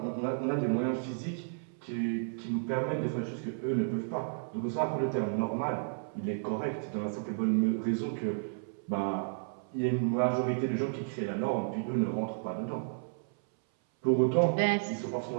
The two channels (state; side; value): silent; left; 56 dB below the other